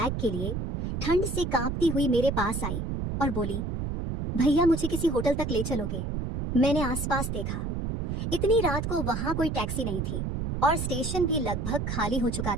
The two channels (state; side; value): noise; right; rumble, 3 dB below the sound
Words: के लिए ठंड से कांपती हुई मेरे पास आई और बोली, भैया मुझे किसी होटल तक ले चलोगे? मैंने आसपास देखा। इतनी रात को वहां कोई टैक्सी नहीं थी और स्टेशन भी लगभग खाली हो चुका